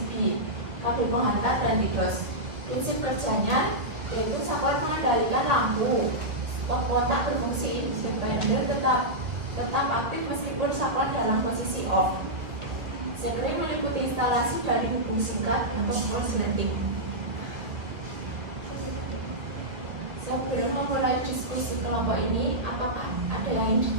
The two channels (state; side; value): late; left; 2.1 ms